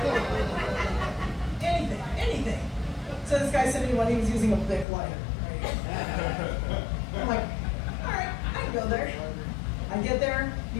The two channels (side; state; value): right; drops out; at 4.9 s